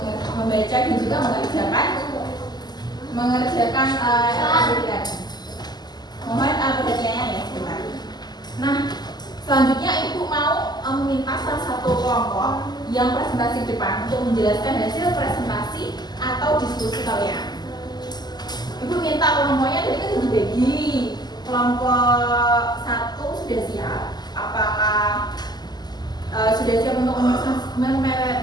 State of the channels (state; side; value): late; right; 0.20 ms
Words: membaca dan juga mengerjakan aktivitas. Mohon perhatiannya ya sebentar. Nah, selanjutnya ibu mau meminta salah satu kelompok yang presentasi depan untuk menjelaskan hasil presentasi atau diskusi kalian. Ibu minta kelompoknya tadi kan dibagi. Kelompok 1 sudah siap. Apakah sudah siap untuk